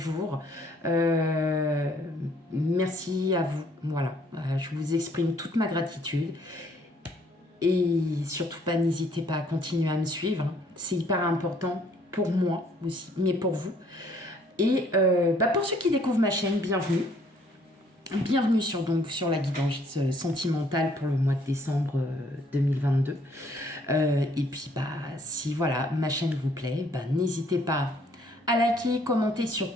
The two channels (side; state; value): both; normal; correlation 0.63